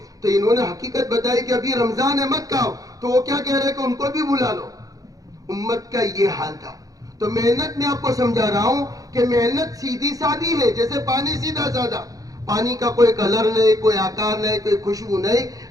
تو انہوں نے حقیقت بتائی کہ ابھی رمضان ہے, مت کھاؤ. تو وہ کیا کہہ رہے کہ ان کو بھی بلا لو. امت کا یہ حال تھا. تو محنت میں آپ کو سمجھا رہا ہوں کہ محنت سیدھی سادی ہے, جیسے پانی سیدھا سادہ. پانی کا کوئی کلر نہیں, کوئی آکار نہیں, کوئی خوشبو نہیں,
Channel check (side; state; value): left; late; 0.17 ms